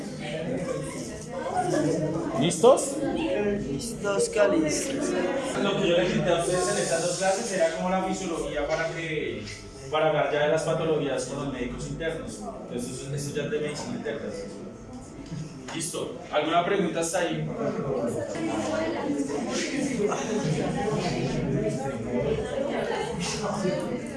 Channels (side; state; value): both; identical; correlation 1.00